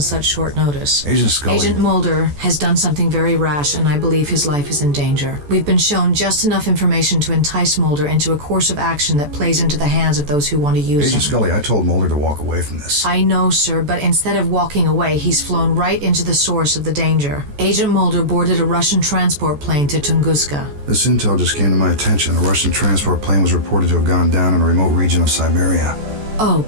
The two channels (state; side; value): late; left; 14 ms